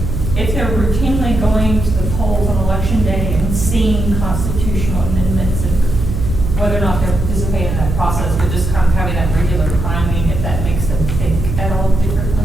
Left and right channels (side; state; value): right; noise; hum, 3 dB below the sound